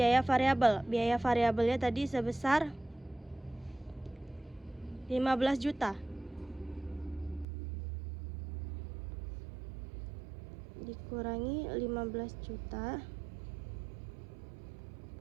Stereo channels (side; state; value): left; drops out; at 7.5 s